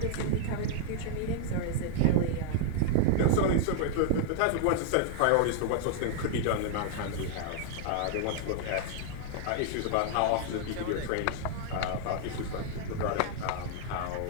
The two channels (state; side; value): different; both; correlation -0.01